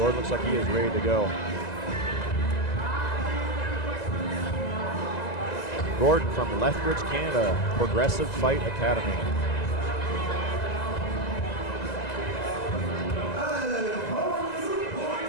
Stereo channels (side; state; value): right; late; 2.0 ms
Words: looks like he is ready to go. Gordon from Lethbridge, Canada, Progressive Fight Academy.